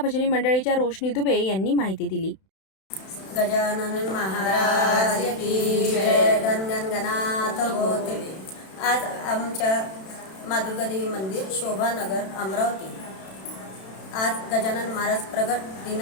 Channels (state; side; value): late; right; 31 ms